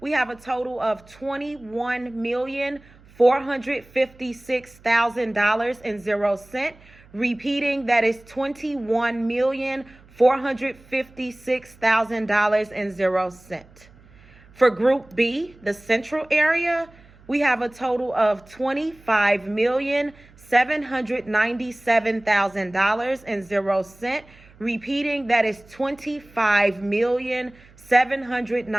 we have a total of $21,456,000.00. Repeating, that is $21,456,000.00. For Group B, the Central area, we have a total of $25,797,000.00. Repeating, that is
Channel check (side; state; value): right; noise; hum, 26 dB below the sound